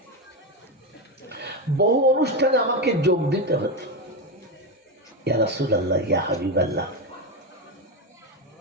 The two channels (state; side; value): normal; both; correlation 0.12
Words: বহু অনুষ্ঠানে আমাকে যোগ দিতে হতো। ইয়া রাসূলুল্লাহ, ইয়া হাবিবাল্লাহ,